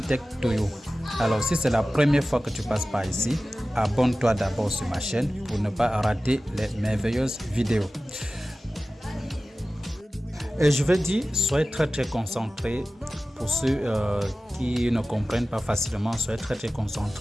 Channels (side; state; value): both; normal; correlation 0.96